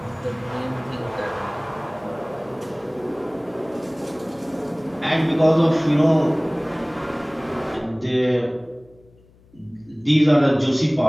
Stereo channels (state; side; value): noise; left; hum, 28 dB below the sound